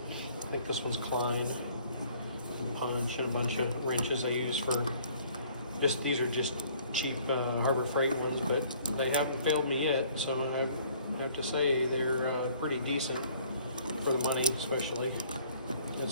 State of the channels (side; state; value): both; inverted; correlation -0.58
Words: I think this one's Klein. And punch and a bunch of wrenches I use for these are just cheap Harbor Freight ones, but they haven't failed me yet, so I have to say they're pretty decent for the money, especially.